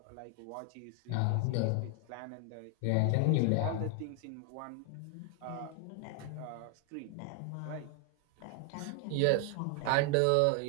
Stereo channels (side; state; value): both; different; correlation 0.01